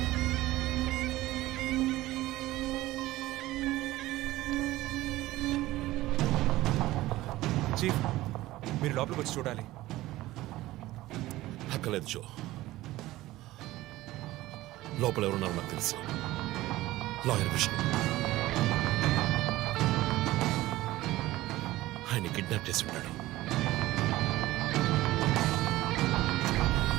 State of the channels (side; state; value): left; quieter; 17.0 dB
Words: చీఫ్ మీరు లోపలికి వచ్చి చూడాలి. అక్కలేదు జో. లోపల ఎవరున్నారో నాకు తెలుసు. లాయర్ విష్ణు. ఆయన కిడ్నాప్ చేసి ఉంటాడు.